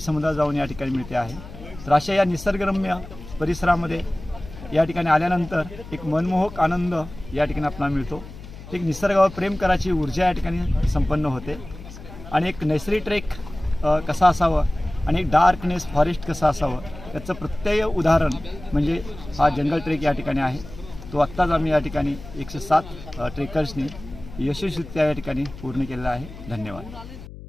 जाऊन या ठिकाणी मिळते आहे। तर अशा या निसर्गरम्य परिसरामध्ये या ठिकाणी आल्यानंतर एक मनमोहक आनंद या ठिकाणी आपल्याला मिळतो। एक निसर्गावर प्रेम करायची ऊर्जा या ठिकाणी संपन्न होते आणि एक नैसर्गिक ट्रेक कसा असावा आणि एक डार्कनेस फॉरेस्ट कसं असावं याचं प्रत्यय उदाहरण म्हणजे हा जंगल ट्रेक या ठिकाणी आहे। तो आत्ताच आम्ही या ठिकाणी 107 ट्रेकर्सनी यशस्वीरित्या या ठिकाणी पूर्ण केलेला आहे। धन्यवाद।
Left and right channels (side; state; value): left; noise; hum, 15 dB below the sound